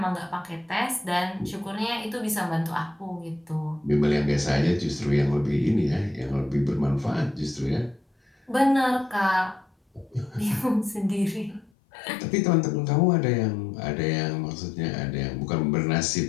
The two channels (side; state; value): right; drops out; at 11.7 s